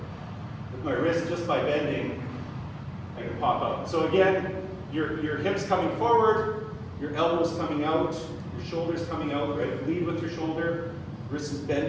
With my wrist, just by bending, I can pop out. So again, your hips coming forward, your elbows coming out, your shoulders coming out, right? Lead with your shoulder, wrist is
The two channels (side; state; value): both; identical; correlation 1.00